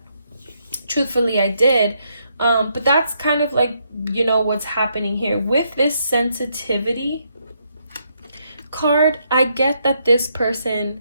Truthfully, I did. But that's kind of like, you know, what's happening here. With this sensitivity card, I get that this person,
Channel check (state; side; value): inverted; both; correlation -0.76